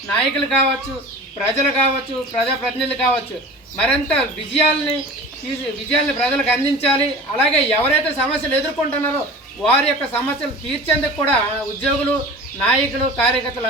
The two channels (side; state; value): both; normal; correlation 0.38